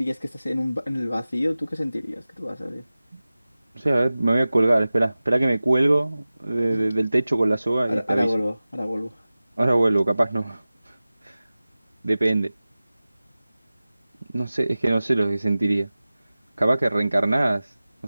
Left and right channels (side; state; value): both; inverted; correlation -0.97